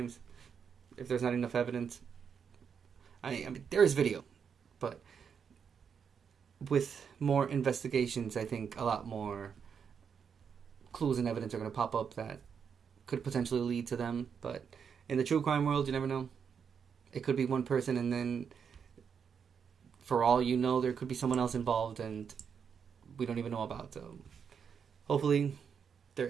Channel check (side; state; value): left; quieter; 6.9 dB